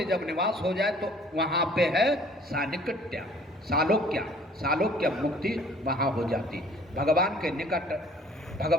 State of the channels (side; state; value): both; normal; correlation 0.54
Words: जब निवास हो जाए तो वहां पे है सानिकट्य, सालोक्य मुक्ति वहां हो जाती। भगवान के निकट,